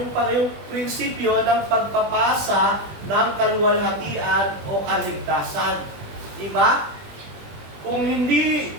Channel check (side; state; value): left; late; 20 ms